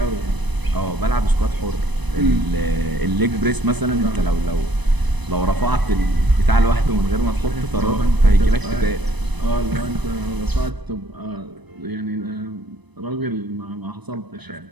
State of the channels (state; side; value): late; left; 1.0 ms